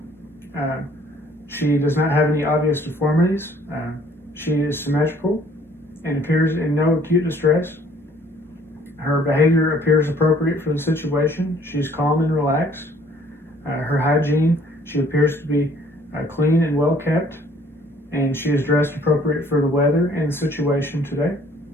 She does not have any obvious deformities. She is symmetrical and appears in no acute distress. Her behavior appears appropriate for the situation. She's calm and relaxed. Her hygiene, she appears to be clean and well kept, and she is dressed appropriate for the weather and the situation today.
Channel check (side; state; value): both; normal; correlation 0.59